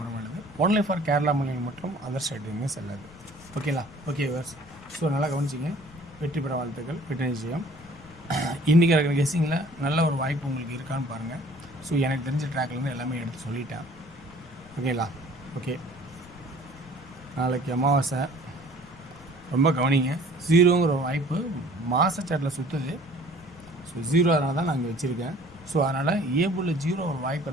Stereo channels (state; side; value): noise; left; rumble, 22 dB below the sound